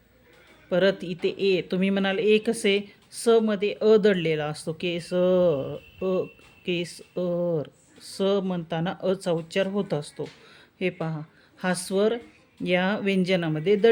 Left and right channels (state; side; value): identical; both; correlation 1.00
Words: परत इथे ए. तुम्ही म्हणाल ए कसे? स मध्ये अ दडलेला असतो. केसर. स म्हणताना अचा उच्चार होत असतो. हे पहा, हा स्वर या व्यंजनामध्ये